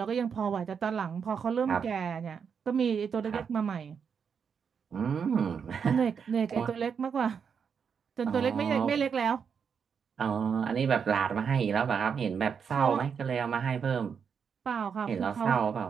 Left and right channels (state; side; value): quieter; left; 6.7 dB